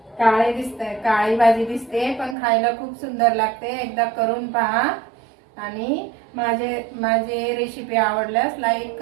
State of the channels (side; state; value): left; drops out; at 2.4 s